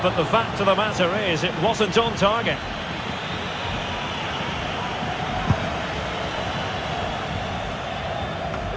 but the fact of the matter is it wasn't on target.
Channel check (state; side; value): identical; both; correlation 1.00